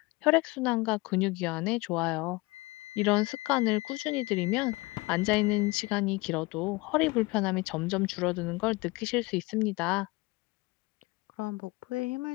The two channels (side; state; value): right; quieter; 23.4 dB